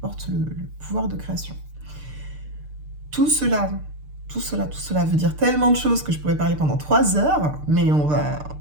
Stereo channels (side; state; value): left; late; 6.7 ms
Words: le pouvoir de création. Tout cela veut dire tellement de choses que je pourrais parler pendant 3 heures, mais on va